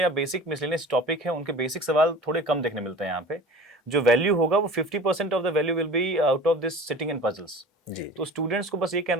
बेसिक मिसलेनियस टॉपिक है, उनके बेसिक सवाल थोड़े कम देखने मिलते हैं यहाँ पे। जो वैल्यू होगा वो 50% of the value will be out of this sitting and puzzles. जी तो स्टूडेंट्स को बस ये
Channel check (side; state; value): both; normal; correlation 0.40